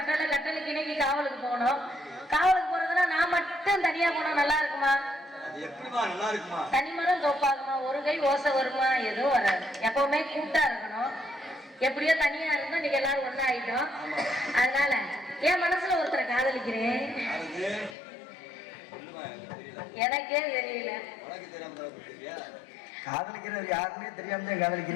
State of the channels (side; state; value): right; drops out; at 17.9 s